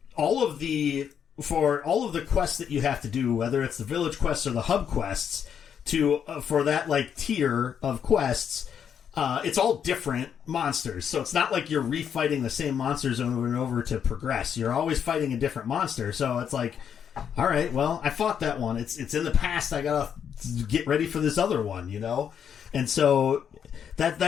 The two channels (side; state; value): right; quieter; 8.1 dB